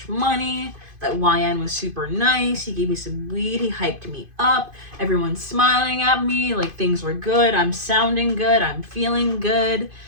money. That YN was super nice. He gave me some weed. He hyped me up. Everyone's smiling at me. Like things were good. I'm sounding good. I'm feeling good.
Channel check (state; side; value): late; left; 2.5 ms